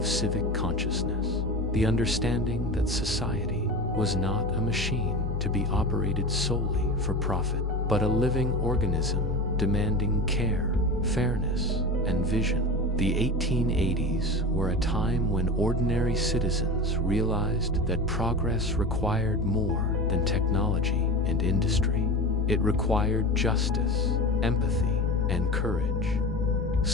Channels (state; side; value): normal; both; correlation 0.29